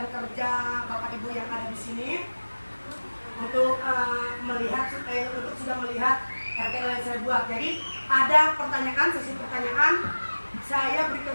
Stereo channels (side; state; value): both; inverted; correlation -1.00